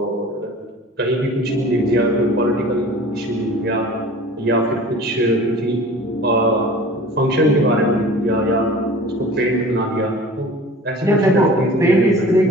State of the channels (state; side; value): normal; both; correlation 0.42